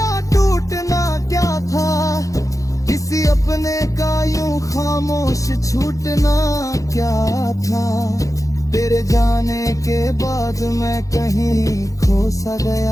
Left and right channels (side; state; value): right; late; 0.16 ms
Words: टूटना क्या था, किसी अपने का यूं खामोश छूटना क्या था। तेरे जाने के बाद मैं कहीं खो सा